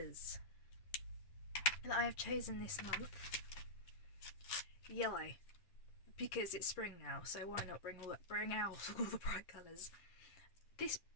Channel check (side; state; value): right; late; 10 ms